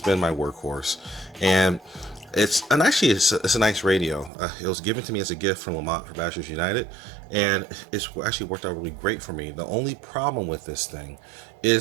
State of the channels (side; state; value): left; drops out; at 4.3 s